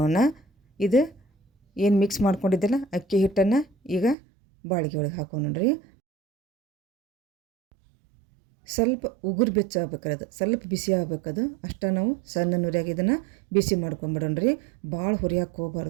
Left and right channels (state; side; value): drops out; left; at 4.2 s